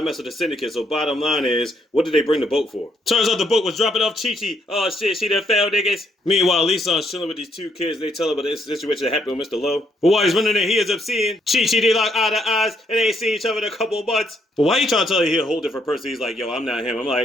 mess with the syndicate. So bottom line is, what did they bring the boat for? Turns out the boat was dropping off Chi-Chi. Oh shit, she done fell, niggas. Meanwhile, Lee-san's chilling with these two kids. They tell him about this situation that happened with Mr. Lowe. But while he's running there, he ends up seeing Chi-Chi. They lock eye to eyes, and they ain't seen each other in a couple months. But why you trying to tell you he's a whole different person? He's like, yo, I'm not him. I'm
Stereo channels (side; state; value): both; normal; correlation 0.73